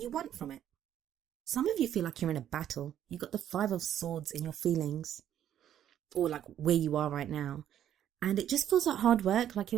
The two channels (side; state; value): left; quieter; 10.6 dB